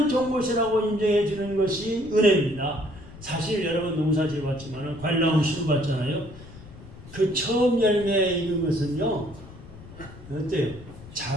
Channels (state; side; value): noise; left; rumble, 17 dB below the sound